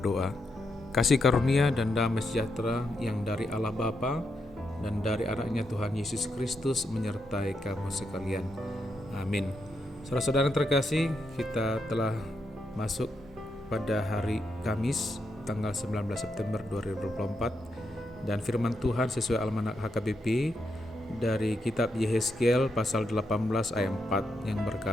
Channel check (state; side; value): normal; both; correlation 0.82